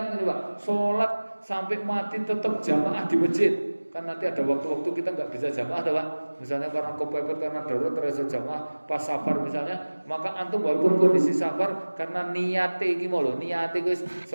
ini Pak, sholat sampai mati tetap jamaah di masjid. Kan nanti ada waktu-waktu kita nggak bisa jamaah, Pak. Misalnya karena kepepet, karena darurat terasa jamaah pas safar misalnya, maka antum walaupun kondisi safar karena niatnya iki mau lho, niatnya guys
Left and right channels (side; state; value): both; inverted; correlation -1.00